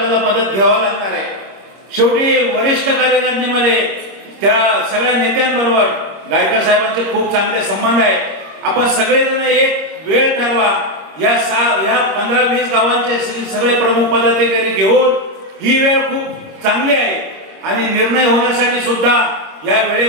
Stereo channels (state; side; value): late; left; 25 ms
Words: मदत घ्यावी लागणार आहे. शेवटी वरिष्ठ कार्यकारिणीमध्ये त्या सगळ्या नेत्यांबरोबर गायकवाड साहेबांचे खूप चांगले संबंध आहे. आपण सगळेजण एक वेळ ठरवा, या 15-20 गावांचे सगळे प्रमुख पदाधिकारी घेऊन ही वेळ खूप चांगली आहे आणि निर्णय होण्यासाठी सुद्धा या